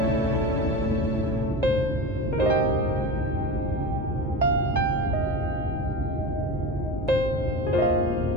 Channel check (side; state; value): both; normal; correlation 0.27